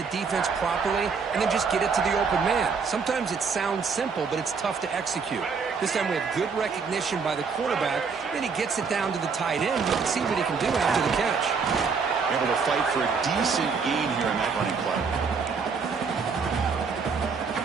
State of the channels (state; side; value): quieter; left; 5.4 dB